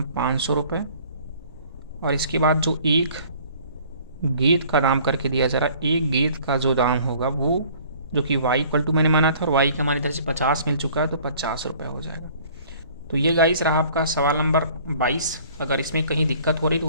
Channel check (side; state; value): both; inverted; correlation -0.53